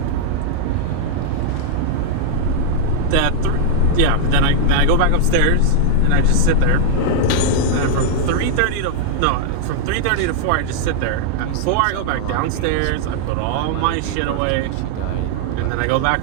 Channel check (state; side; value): different; both; correlation -0.01